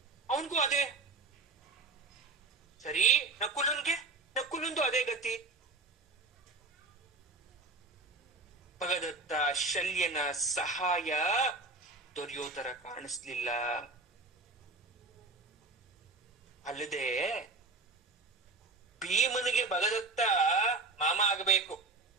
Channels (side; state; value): left; quieter; 3.5 dB